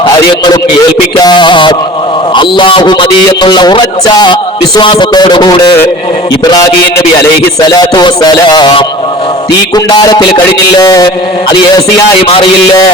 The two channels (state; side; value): normal; both; correlation 0.42